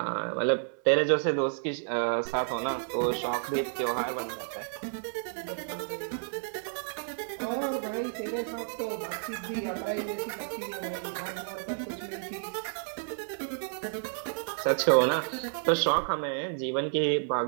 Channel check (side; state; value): left; silent; 57 dB below the other